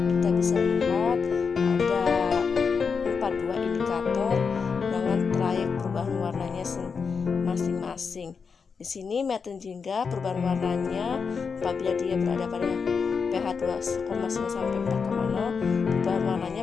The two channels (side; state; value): right; quieter; 5.6 dB